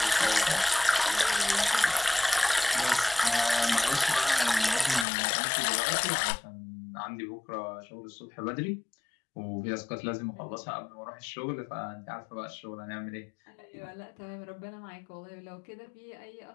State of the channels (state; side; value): drops out; right; at 5.1 s